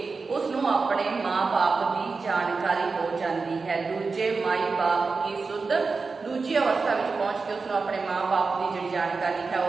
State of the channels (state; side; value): quieter; left; 4.4 dB